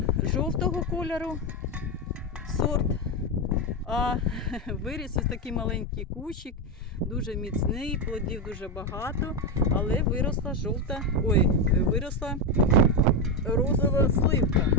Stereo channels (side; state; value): both; normal; correlation 0.10